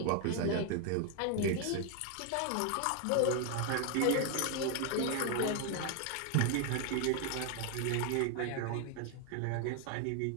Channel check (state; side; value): different; both; correlation 0.00